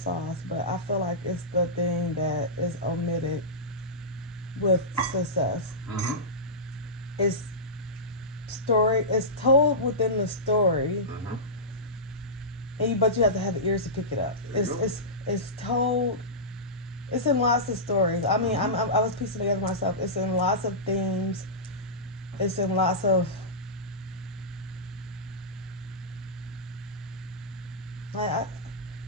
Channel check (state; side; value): normal; both; correlation -0.16